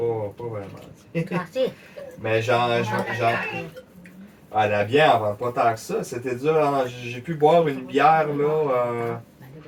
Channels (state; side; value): identical; both; correlation 1.00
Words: Mais ah, la bière, on vend pas tant que ça. C'était dur. Hein. J'ai pu boire une bière, là.